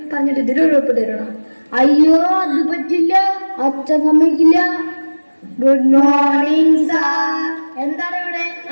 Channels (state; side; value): inverted; both; correlation -1.00